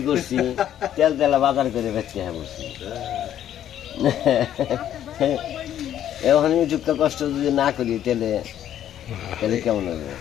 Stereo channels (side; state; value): right; quieter; 10.9 dB